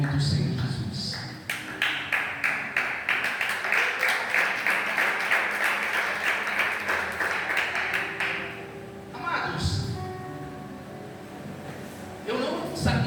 do Senhor Jesus. Amados, eu não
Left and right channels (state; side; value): identical; both; correlation 1.00